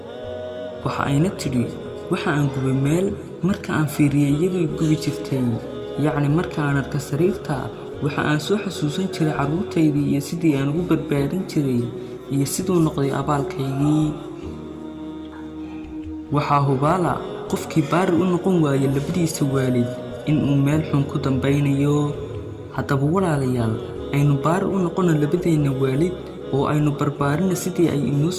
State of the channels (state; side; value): identical; both; correlation 1.00